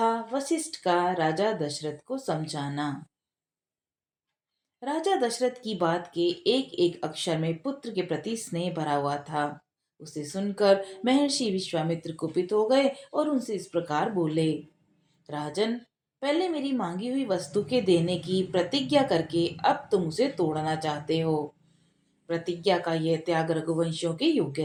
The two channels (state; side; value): identical; both; correlation 1.00